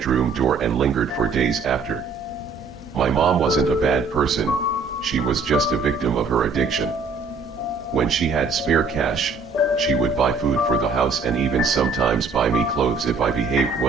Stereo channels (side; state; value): left; quieter; 4.4 dB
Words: door and lingered for days after. My mom wasn't a bad person, she was just a victim of her addiction. When she had spare cash, she would buy food for the house and even sometimes buy me clothes if I behaved